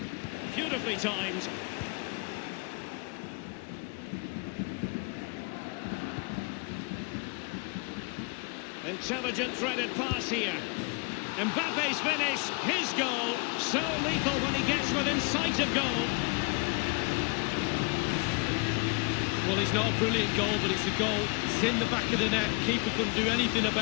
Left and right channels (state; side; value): quieter; right; 32.0 dB